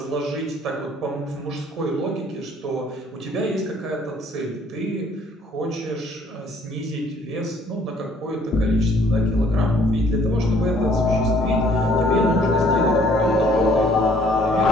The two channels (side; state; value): both; normal; correlation 0.60